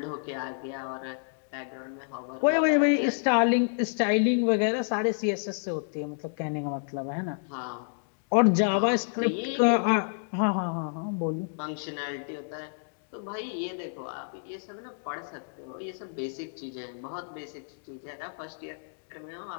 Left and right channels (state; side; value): silent; right; digital silence